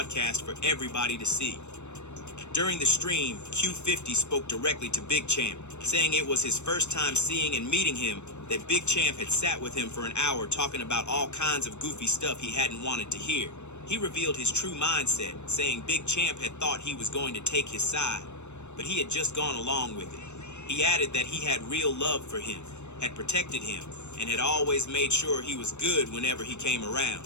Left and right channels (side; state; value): right; late; 0.82 ms